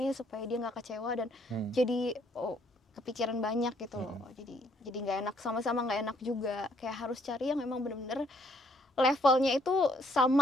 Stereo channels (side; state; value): both; normal; correlation 0.66